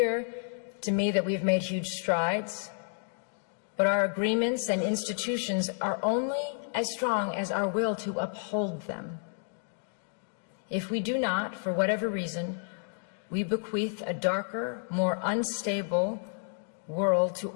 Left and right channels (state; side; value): silent; right; 57 dB below the other